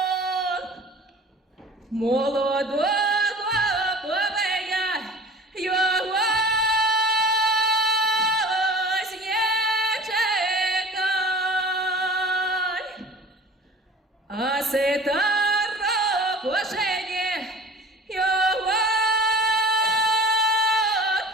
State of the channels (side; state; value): both; normal; correlation 0.43